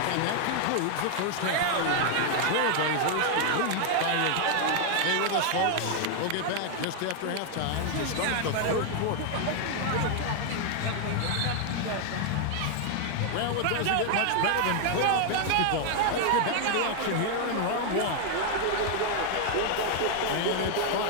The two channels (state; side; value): different; both; correlation 0.00